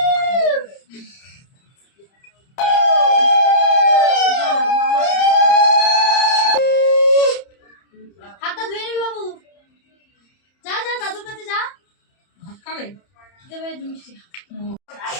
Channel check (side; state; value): right; late; 30 ms